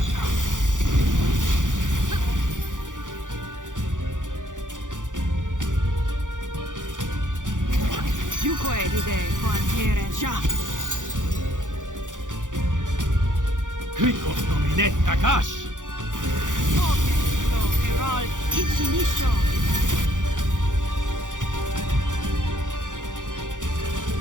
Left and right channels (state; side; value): late; left; 0.87 ms